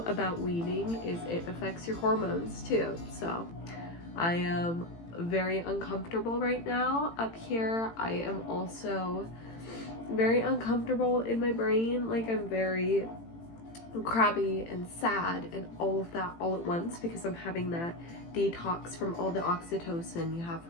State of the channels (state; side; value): late; right; 18 ms